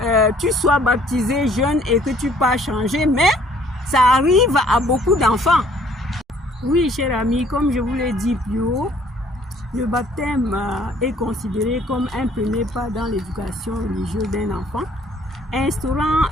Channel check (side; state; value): both; normal; correlation 0.59